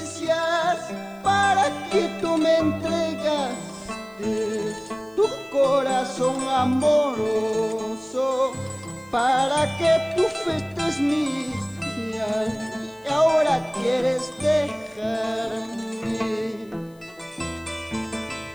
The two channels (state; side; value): noise; left; hiss, 30 dB below the sound